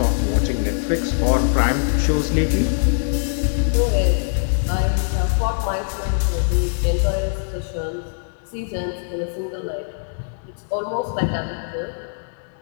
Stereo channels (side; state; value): right; silent; digital silence